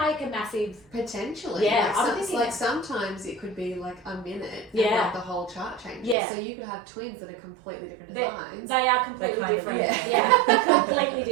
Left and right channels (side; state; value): left; drops out; at 6.2 s